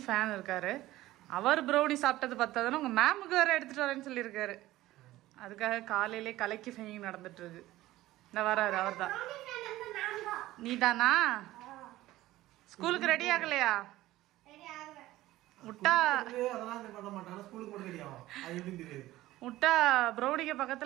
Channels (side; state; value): left; quieter; 16.4 dB